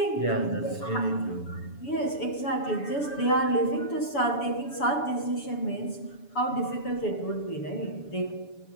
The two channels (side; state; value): right; late; 7.0 ms